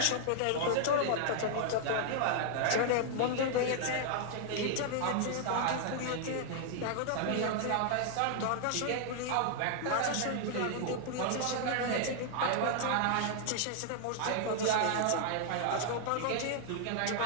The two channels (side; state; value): both; different; correlation 0.00